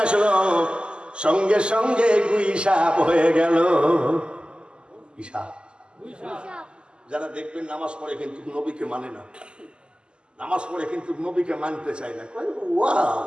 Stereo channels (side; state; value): left; late; 0.049 ms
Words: আসলো, সঙ্গে সঙ্গে গুইসাপ হয়ে গেল। যারা দেখবেন নামাজ পড়ে কিন্তু নবীকে মানে না, নামাজ পড়ে কিন্তু নবীকে মানতে চায় না,